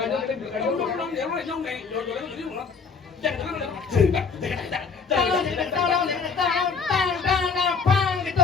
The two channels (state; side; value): quieter; right; 5.3 dB